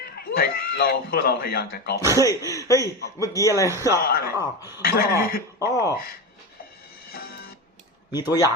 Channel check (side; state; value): both; normal; correlation 0.20